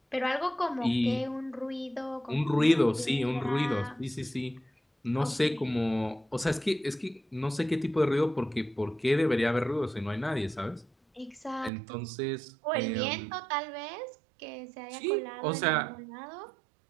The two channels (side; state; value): left; drops out; at 11.7 s